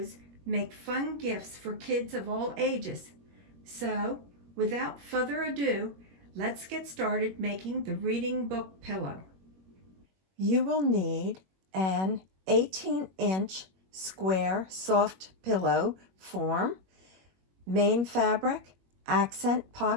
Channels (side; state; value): left; late; 21 ms